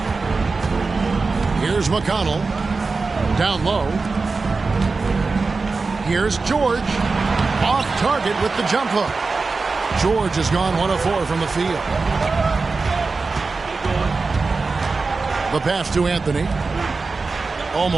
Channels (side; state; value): left; quieter; 4.1 dB